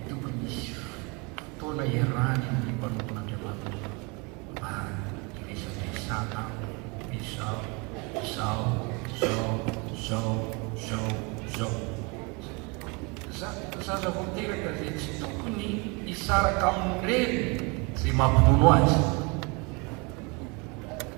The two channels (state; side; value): quieter; left; 29.6 dB